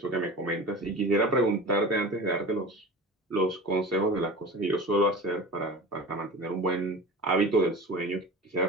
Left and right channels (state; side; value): normal; both; correlation 0.34